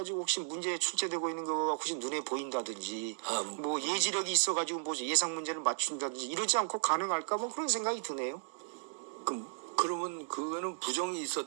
혹시 문제에 출제되고 있는 거가 혹시 눈에 보인다든지 뭐 예지력이 있어가지고 뭐 예상 문제를 맞춘다든지 이러지 않고 가능할까 뭐 그런 생각이 드네요. 그러면 그거는 부정이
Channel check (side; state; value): left; silent; digital silence